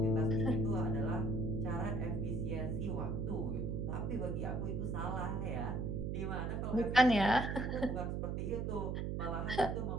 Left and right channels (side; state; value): right; noise; hum, 1 dB below the sound